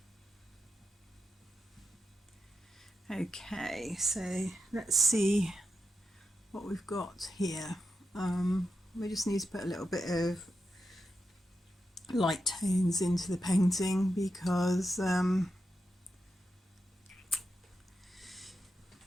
Okay, so let's see what we've got here. We just need to put a little bit of light tones into the painting, because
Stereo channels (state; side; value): normal; both; correlation 0.87